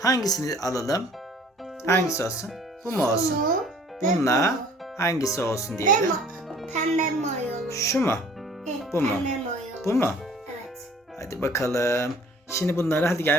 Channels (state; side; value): normal; both; correlation 0.53